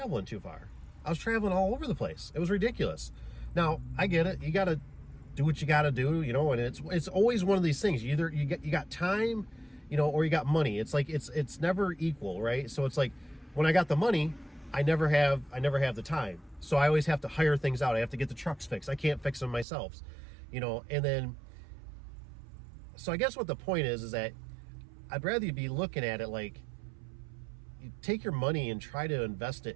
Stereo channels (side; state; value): left; drops out; at 19.7 s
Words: too far. I was traveling all over the place. It was ridiculous. Now, I get it. You got to do what you got to do, and it's always one of these things. You got time, or you got money. It's like it's never equal, right? So it's like when I got the money, I never have the time. So I always have to hire things out. I have to get the trucks fixed. I can't fix them myself, and then so I guess what the point is that I'd rather you be looking at it like you take your money and try to invest